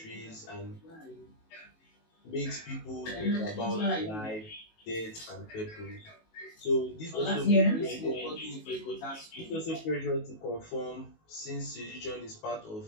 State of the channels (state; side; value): late; right; 19 ms